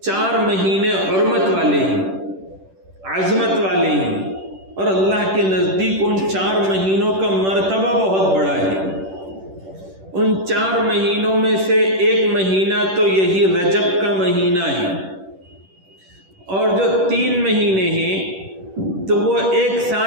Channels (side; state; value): left; late; 10 ms